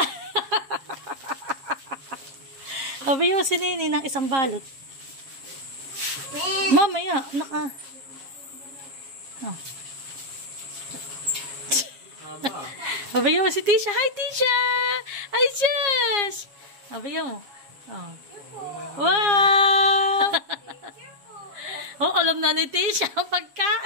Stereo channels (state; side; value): late; left; 7.4 ms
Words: Sabi mo si Nini ng isang balot. Merry Mamaya, naka... Oh. Sabi mo si Tisha. Hi, Tisha! Hi, Jess! Sabi mo. Oh. Wow! Oh, alam na ni Tisha ang